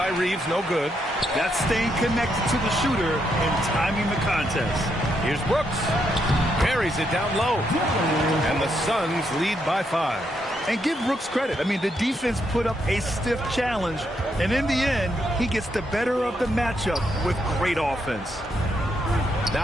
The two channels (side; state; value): both; normal; correlation 0.78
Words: Reeves, no good. That's staying connected to the shooter and timing the contest. Here's Brooks. Carries it down low. And the Suns lead by 5. And give Brooks credit. I mean, the defense put up a stiff challenge. And in the end, he gets the better of the matchup with great offense.